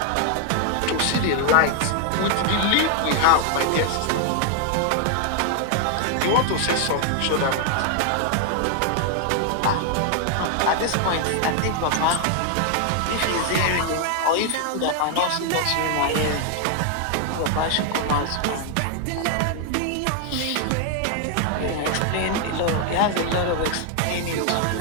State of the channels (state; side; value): different; both; correlation 0.00